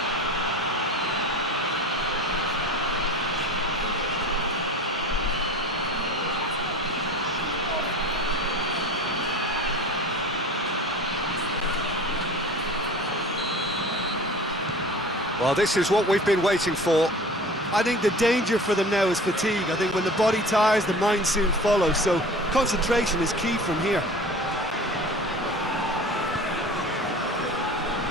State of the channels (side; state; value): both; normal; correlation 0.39